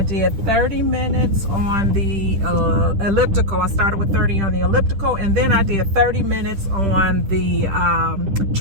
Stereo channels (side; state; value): left; late; 10 ms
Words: 30 minutes on the elliptical. I started with 30 on the elliptical, and then I did 30 minutes on the